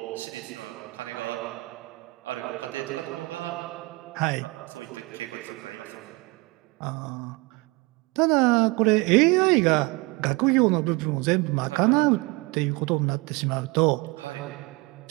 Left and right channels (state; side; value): quieter; left; 24.8 dB